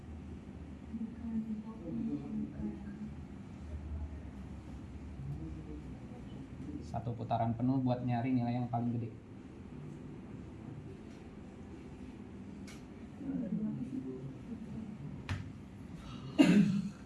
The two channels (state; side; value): identical; both; correlation 1.00